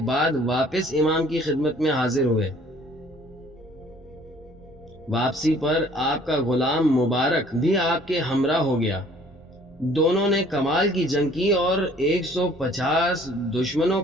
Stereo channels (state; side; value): normal; both; correlation 0.56